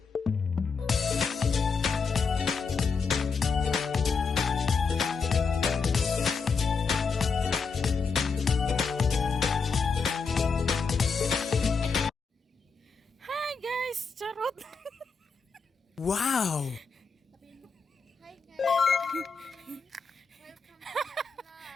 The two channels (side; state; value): right; quieter; 5.0 dB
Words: guys! Charot! Wow! Hi guys! Welcome to my vlog.